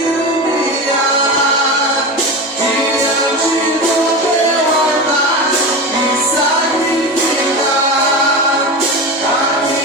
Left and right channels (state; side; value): normal; both; correlation 0.24